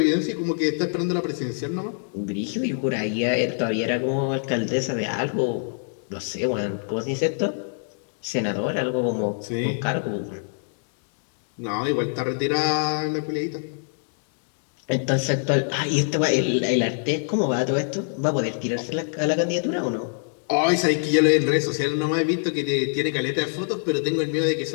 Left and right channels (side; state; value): right; silent; digital silence